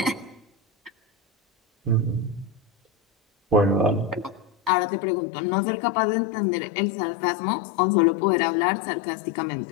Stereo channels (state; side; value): drops out; right; at 4.7 s